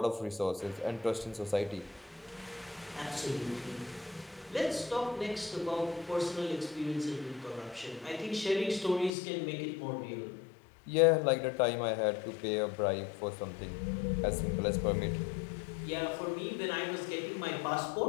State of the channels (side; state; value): right; drops out; at 9.1 s